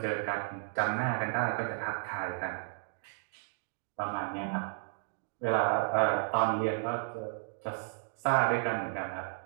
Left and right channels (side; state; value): left; silent; 56 dB below the other